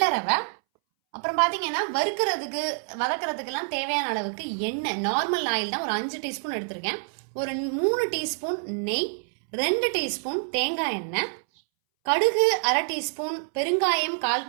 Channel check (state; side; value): silent; left; 61 dB below the other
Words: ரவை. அப்புறம் பாத்தீங்கன்னா வறுக்கிறதுக்கு வதக்கிறதுக்கெல்லாம் தேவையான அளவுக்கு எண்ணெய், நார்மல் ஆயில் தான் ஒரு 5 டீஸ்பூன் எடுத்திருக்கேன். ஒரு 3 டீஸ்பூன் நெய், 2 டீஸ்பூன் தேங்காய் எண்ணெய், கடுகு 1/2 டீஸ்பூன், பெருங்காயம் 1/4